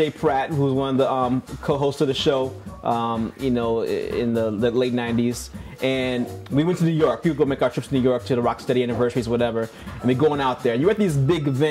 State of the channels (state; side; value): identical; both; correlation 1.00